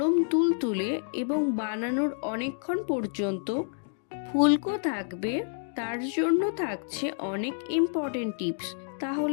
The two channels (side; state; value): right; silent; digital silence